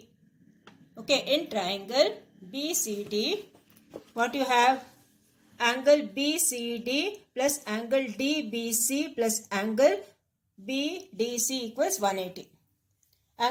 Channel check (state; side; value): identical; both; correlation 1.00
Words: okay, in triangle BCD, what you have? Angle BCD plus angle DBC plus angle BDC equals 180.